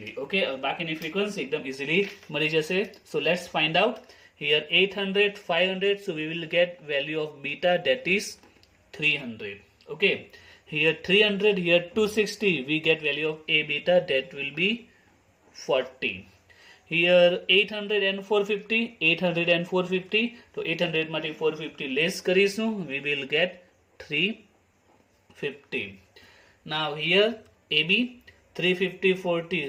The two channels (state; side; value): identical; both; correlation 1.00